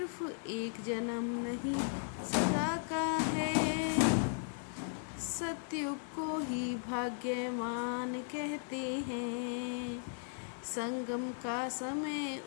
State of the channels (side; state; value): right; silent; digital silence